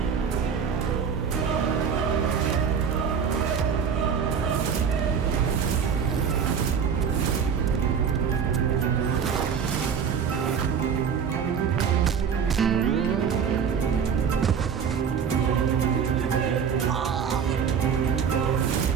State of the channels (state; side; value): quieter; left; 6.9 dB